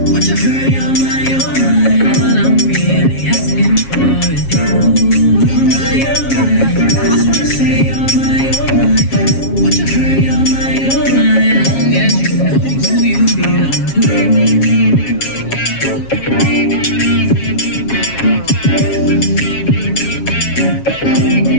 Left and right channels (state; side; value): late; right; 7.3 ms